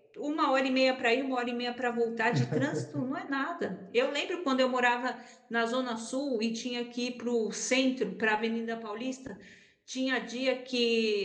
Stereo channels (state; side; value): identical; both; correlation 1.00